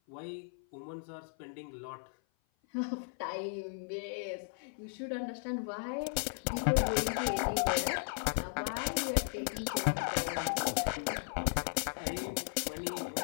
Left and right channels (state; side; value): silent; right; 54 dB below the other